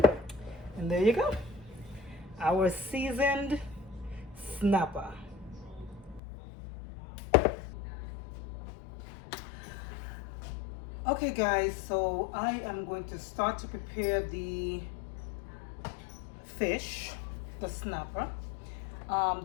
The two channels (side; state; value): right; drops out; at 6.2 s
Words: And there you go, our seasoned snapper. Okay guys, so I am going to start to prepare the fish, the snapper.